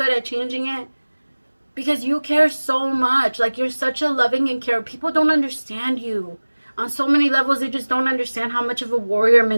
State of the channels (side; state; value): both; inverted; correlation -1.00